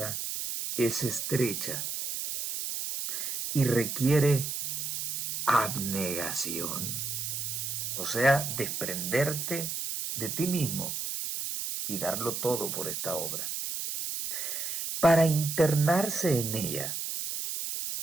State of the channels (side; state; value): right; noise; hiss, 3 dB below the sound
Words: es estrecha y requiere abnegación, o sea, desprenderte de ti mismo y darlo todo por esta obra. Para internarse en ella